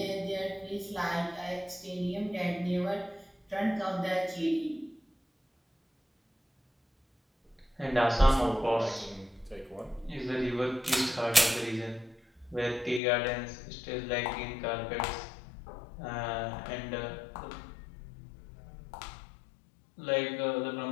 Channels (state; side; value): drops out; right; at 13.0 s